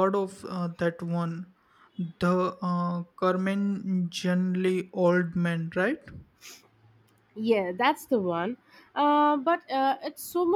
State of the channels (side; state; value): both; identical; correlation 1.00